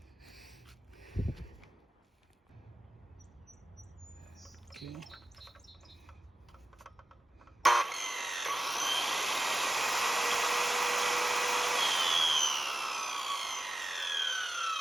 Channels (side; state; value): both; normal; correlation 0.91